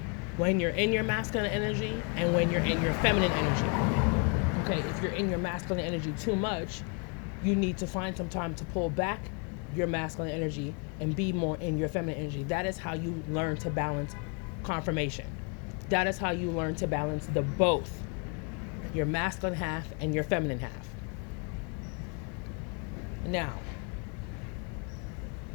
when you're in your masculine energy and when you're in your feminine energy. Okay, if you're in your masculine energy too much, you need to find some time to pull back your masculine energy and be more in your feminine energy. That is how you learn to balance confirmation. That is how you learn to balance the both, your masculine half and your feminine half. Now,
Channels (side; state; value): right; quieter; 35.0 dB